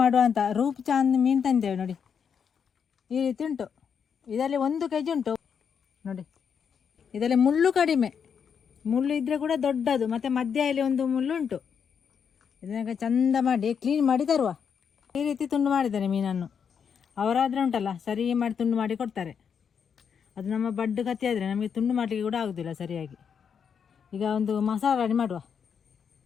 ಮಾಡುವ ಅಂತ ರೂಪ್ ಚಾಂದ್ ಮೀನು ತಂದೇವೆ ನೋಡಿ. ಈ ರೀತಿ ಉಂಟು. ಇದರಲ್ಲಿ 1 kg ಉಂಟು ನೋಡಿ. ಇದರಲ್ಲಿ ಮುಳ್ಳು ಕಡಿಮೆ, ಮುಳ್ಳು ಇದ್ದರೆ ಕೂಡ ದೊಡ್ಡದು, ಮತ್ತು ಮಧ್ಯದಲ್ಲಿ ಒಂದು ಮುಳ್ಳು ಉಂಟು. ಇದನ್ನ ಚಂದ ಮಾಡಿ ಕ್ಲೀನ್ ಮಾಡಿ ತರುವ. ಈ ರೀತಿ ತುಂಡು ಮಾಡಿದ್ದಾರೆ ಮೀನನ್ನು. ಅವರಾದರೆ ಉಂಟಲ್ಲ ಸರಿ ಮಾಡಿ ತುಂಡು ಮಾಡಿ ಕೊಡ್ತಾರೆ. ಅದು ನಮ್ಮ ಬಡ್ಡು ಕತ್ತಿ ಆದರೆ ನಮಗೆ ತುಂಡು ಮಾಡಲಿಕ್ಕೆ ಕೂಡ ಆಗೋದಿಲ್ಲ ಸರಿಯಾಗಿ. ಈಗ ಒಂದು ಮಸಾಲ ರೆಡಿ ಮಾಡುವ.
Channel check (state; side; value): quieter; right; 7.1 dB